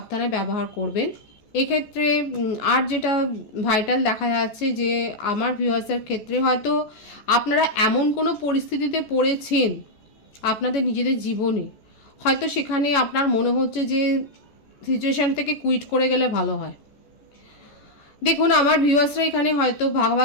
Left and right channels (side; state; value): right; late; 14 ms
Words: ব্যবহার করবেন এক্ষেত্রে। আর যেটা ভাইটাল দেখা যাচ্ছে যে আমার ভিউয়ার্সের ক্ষেত্রে হয়তো আপনারা এমন কোনো পরিস্থিতিতে পড়েছেন আপনাদের নিজেদের জীবনে, হয়তো সেখানে আপনার মনে হচ্ছে যে সিচুয়েশান থেকে কুইট করে গেলে ভালো হয়। দেখুন আমার ভিউয়ার্সরা এখানে হয়তো